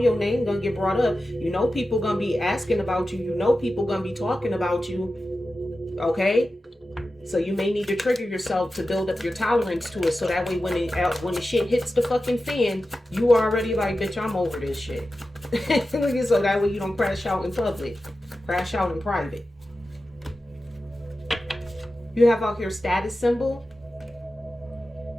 name gonna get brought up. You know people gonna be asking about you. You know people gonna be talking about you. Okay? So you may need to trigger yourself to build up your tolerance to it. So that way when the shit hits the fucking fan, you are already like, bitch, I'm over this shit. So that way you don't crash out in public. Crash out in private. You have out here status symbol.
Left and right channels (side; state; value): both; normal; correlation 0.93